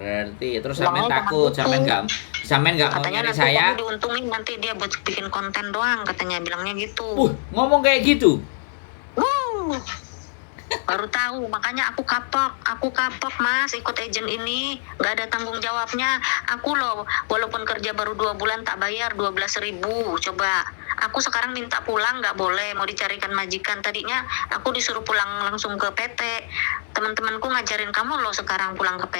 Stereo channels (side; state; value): right; silent; digital silence